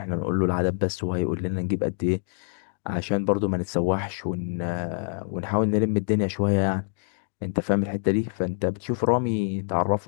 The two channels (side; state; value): right; silent; digital silence